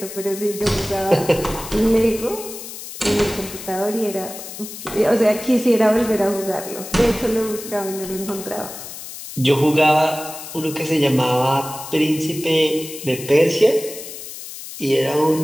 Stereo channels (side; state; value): left; noise; hiss, 11 dB below the sound